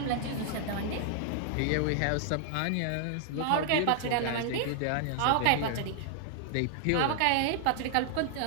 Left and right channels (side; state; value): both; different; correlation -0.01